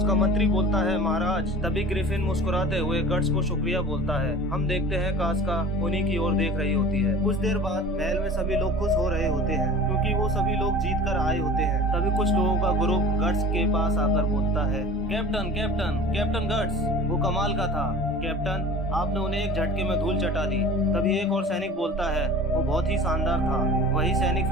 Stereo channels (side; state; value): both; normal; correlation 0.41